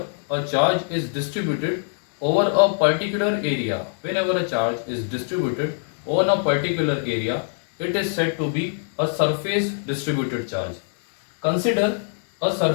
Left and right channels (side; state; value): right; silent; digital silence